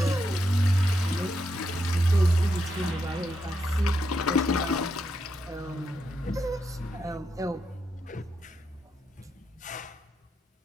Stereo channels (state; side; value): normal; both; correlation 0.82